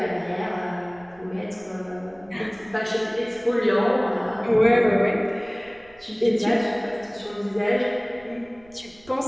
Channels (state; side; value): noise; right; rumble, 27 dB below the sound